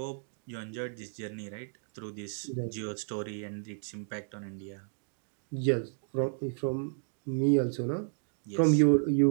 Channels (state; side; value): silent; left; digital silence